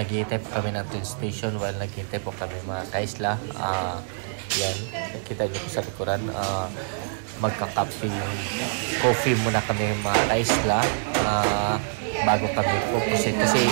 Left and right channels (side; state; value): left; silent; 61 dB below the other